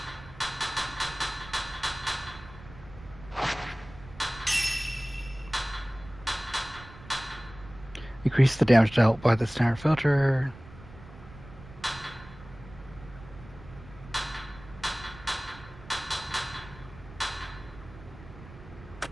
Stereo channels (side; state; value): right; noise; rumble, 18 dB below the sound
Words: Increase the damage dealt by the standard filter.